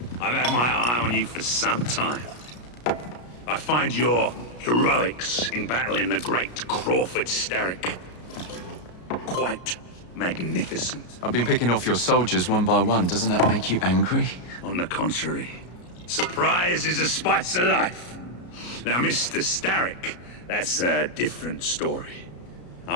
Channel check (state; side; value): late; right; 33 ms